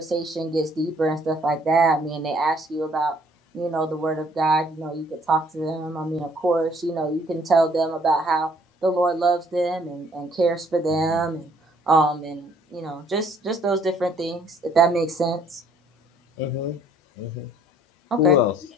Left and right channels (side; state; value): both; normal; correlation 0.61